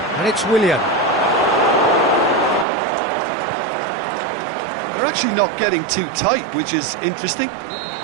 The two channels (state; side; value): drops out; left; at 2.7 s